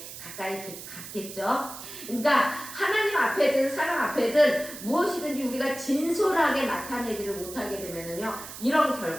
가까이 갔겠죠. 그러니까 하나님 앞에든 사람 앞에든 무엇이든지 우리가 진솔하게 나타내지를 못하게 되면은요 이런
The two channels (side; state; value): right; noise; hiss, 12 dB below the sound